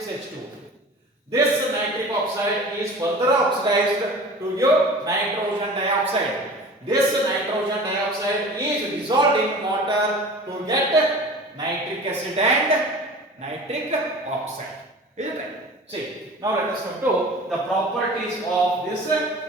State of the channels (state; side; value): normal; both; correlation 0.40